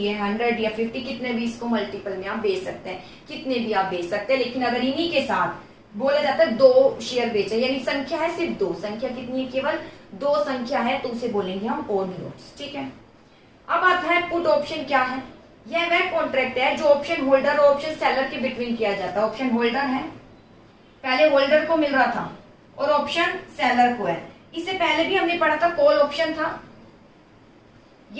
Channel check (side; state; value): both; identical; correlation 1.00